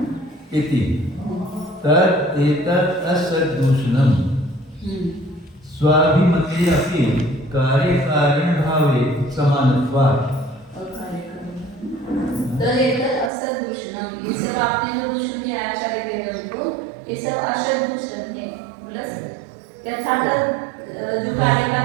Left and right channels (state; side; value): drops out; left; at 13.3 s